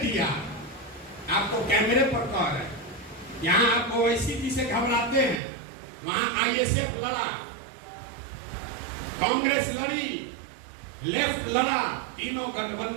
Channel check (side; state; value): left; drops out; at 5.4 s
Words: आपको कैमरे पर कह रहे हैं, यहाँ आप ओवैसी जी से घबराते हैं, वहां आईएसएफ लड़ा, कांग्रेस लड़ी, लेफ्ट लड़ा, तीनों